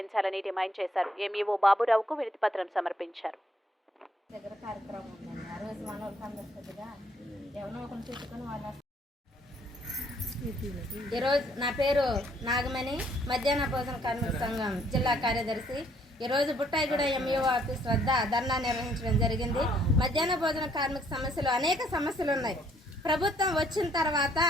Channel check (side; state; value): both; normal; correlation 0.66